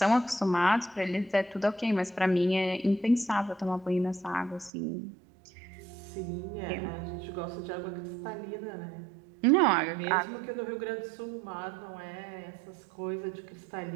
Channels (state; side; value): drops out; left; at 4.7 s